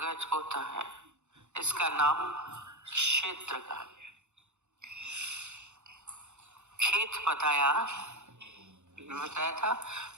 होता है। इसका नाम क्षेत्र कहा गया। खेत बताया था,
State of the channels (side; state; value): left; late; 0.83 ms